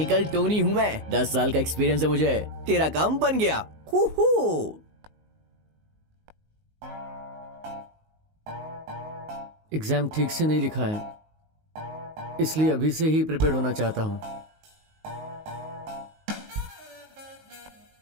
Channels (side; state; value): left; late; 19 ms